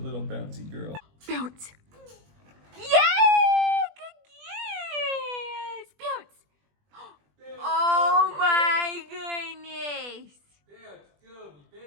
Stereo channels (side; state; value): left; late; 20 ms